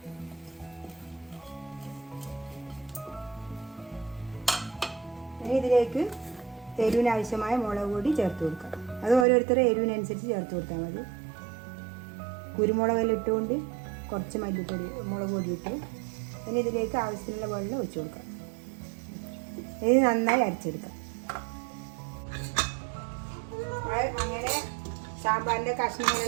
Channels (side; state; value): left; drops out; at 9.2 s